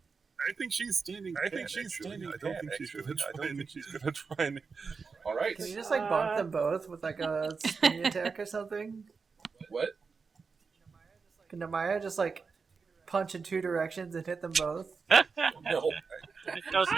I think she's standing. I don't think she's going to try and. All right. Can you just bonk them both with a spinny attack or something? What? Can Namaya just punch in two directions and hit them both? No. I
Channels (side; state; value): left; quieter; 5.0 dB